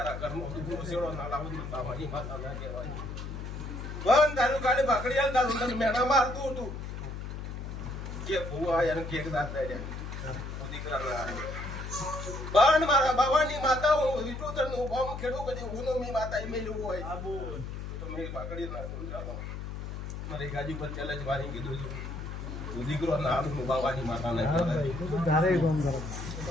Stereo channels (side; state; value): left; noise; hum, 7 dB below the sound